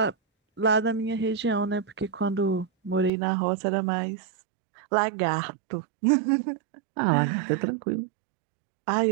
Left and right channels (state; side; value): drops out; left; at 3.1 s